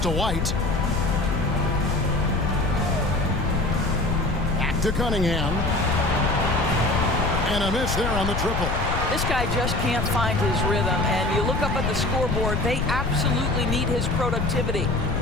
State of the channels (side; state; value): left; noise; rumble, 1 dB below the sound